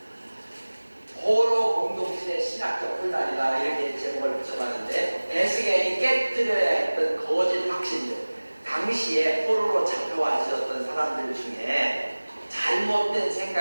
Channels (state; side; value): inverted; both; correlation -1.00